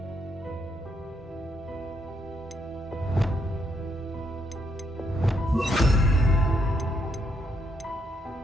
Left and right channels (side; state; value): both; normal; correlation 0.75